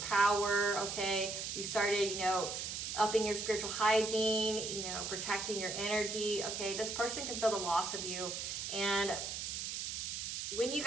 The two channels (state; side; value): noise; right; hiss, 4 dB below the sound